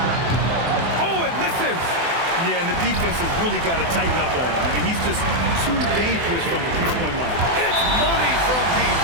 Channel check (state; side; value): late; left; 24 ms